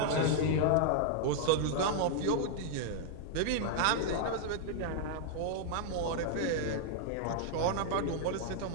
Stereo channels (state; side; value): different; both; correlation -0.01